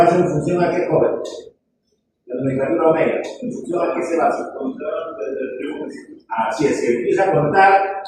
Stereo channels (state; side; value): identical; both; correlation 1.00